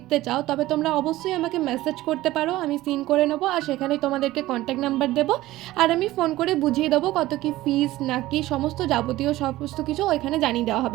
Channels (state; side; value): quieter; left; 16.7 dB